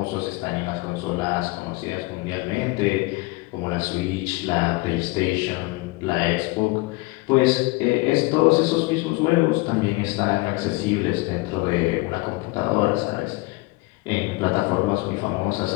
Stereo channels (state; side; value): quieter; right; 23.5 dB